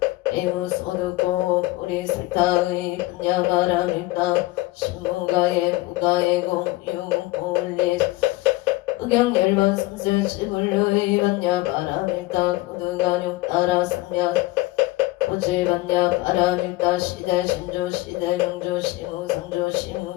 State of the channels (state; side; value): quieter; right; 20.1 dB